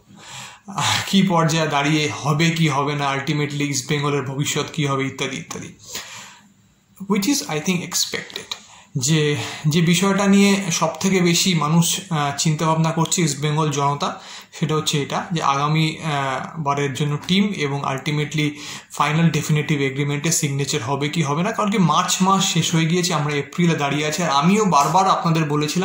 কি পর্যায়ে দাঁড়িয়ে, হবে কি হবে না, আলটিমেটলি ইস্টবেঙ্গলের ভবিষ্যৎ কি হবে, ইত্যাদি ইত্যাদি, which is I think expected. যে বিষয়টা নিয়ে সব থেকে বেশি মানুষ চিন্তাভাবনা করছে ইস্টবেঙ্গল জনতা, সেটা হচ্ছে এটা যে আগামী বারের জন্য টিম এবং আলটিমেটলি ফাইনাল ডেফিনেটিভ এগ্রিমেন্টে সিগনেচার হবে কি হবে না। কারণ কি মার্চ মাস শেষ হয়ে গিয়েছে, আমরা এপ্রিলে দাঁড়িয়ে আছি, আর আমিও বারবার আপনাদের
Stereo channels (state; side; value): identical; both; correlation 1.00